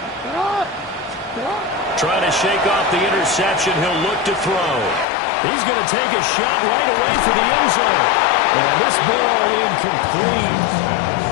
Trying to shake off the interception. He'll look to throw. He's going to take a shot right away for the end zone. And this ball incomplete.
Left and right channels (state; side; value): drops out; right; at 5.1 s